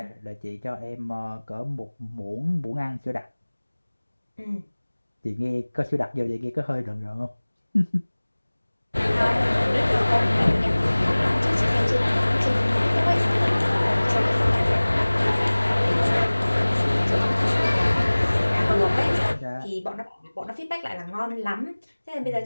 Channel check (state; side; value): inverted; both; correlation -1.00